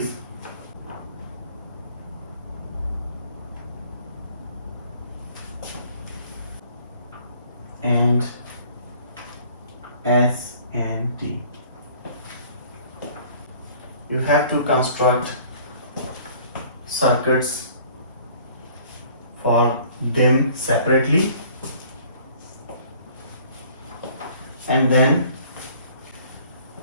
and S and T. You have to construct circuits for them separately, and then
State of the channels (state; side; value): inverted; both; correlation -0.54